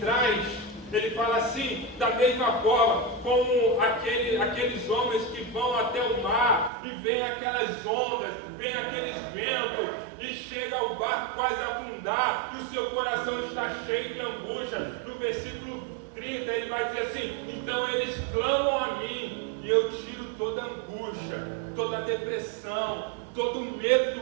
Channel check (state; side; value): drops out; left; at 6.7 s